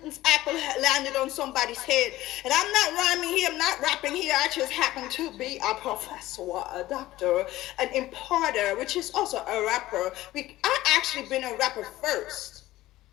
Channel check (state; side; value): quieter; right; 16.3 dB